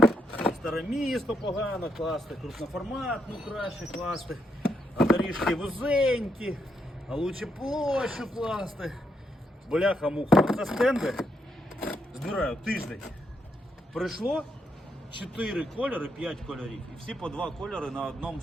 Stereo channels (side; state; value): both; normal; correlation 0.78